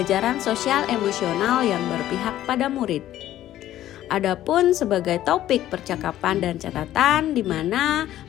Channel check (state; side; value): quieter; right; 13.1 dB